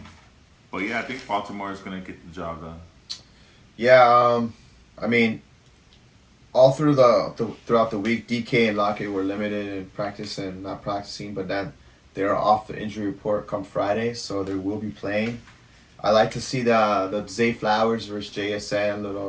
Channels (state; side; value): identical; both; correlation 1.00